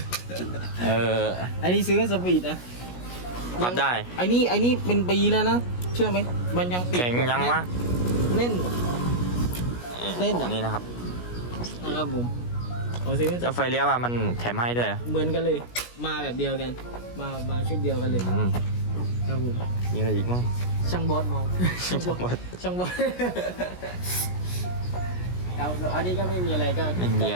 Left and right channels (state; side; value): late; right; 17 ms